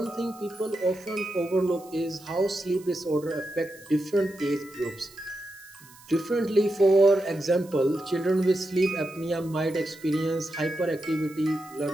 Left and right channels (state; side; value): noise; right; hiss, 23 dB below the sound